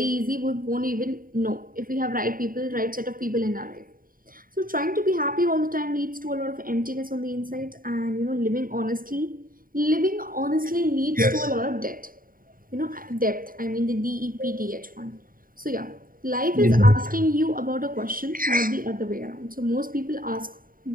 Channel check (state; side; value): late; left; 0.41 ms